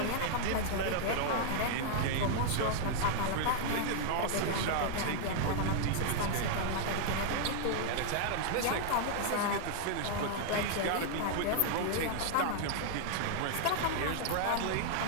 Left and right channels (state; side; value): different; both; correlation -0.01